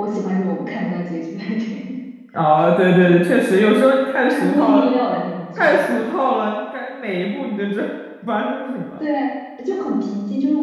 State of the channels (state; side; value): identical; both; correlation 1.00